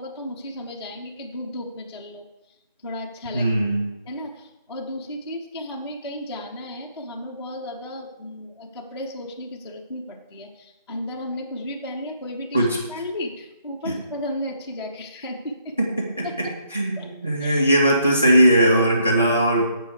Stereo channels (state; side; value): inverted; both; correlation -0.70